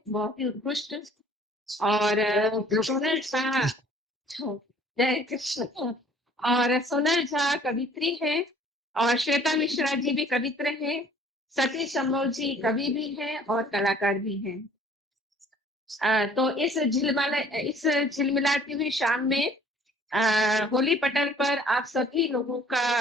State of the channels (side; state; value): both; normal; correlation 0.55